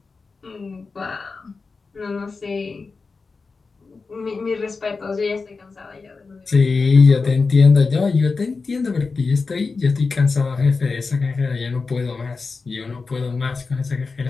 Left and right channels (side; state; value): right; quieter; 4.4 dB